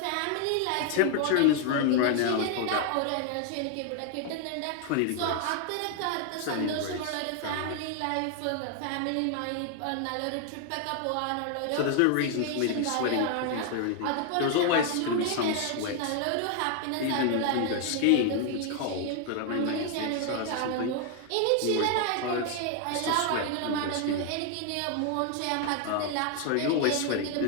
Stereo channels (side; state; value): both; different; correlation 0.00